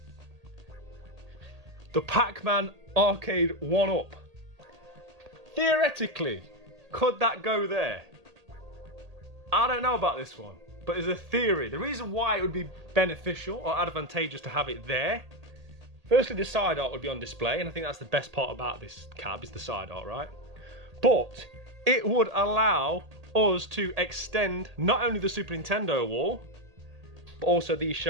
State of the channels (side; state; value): left; late; 1.8 ms